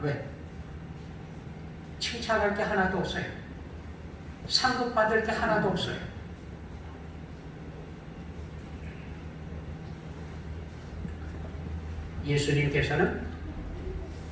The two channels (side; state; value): both; identical; correlation 1.00